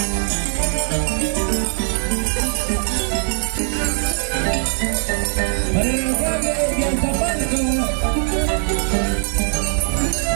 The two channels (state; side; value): silent; left; 65 dB below the other